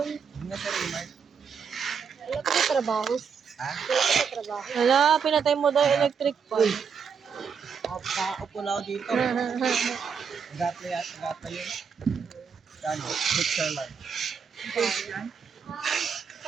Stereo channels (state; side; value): quieter; left; 6.4 dB